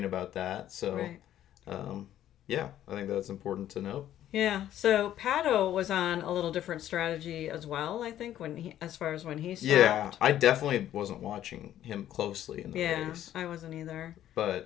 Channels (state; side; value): quieter; right; 11.9 dB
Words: about that. So, Right. yeah, I think that's important to note. Yeah, so Pato was on a little different strategy as well, I think, as far as when he stopped. Yeah, I definitely wasn't watching him closely in the race. I wasn't either.